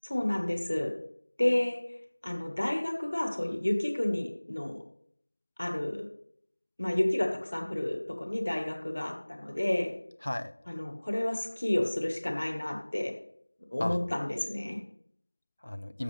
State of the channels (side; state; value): both; inverted; correlation -1.00